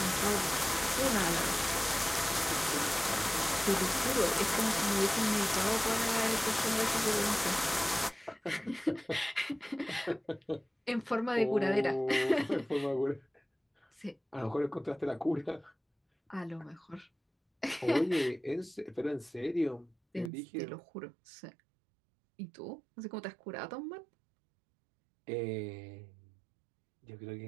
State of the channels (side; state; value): left; drops out; at 20.3 s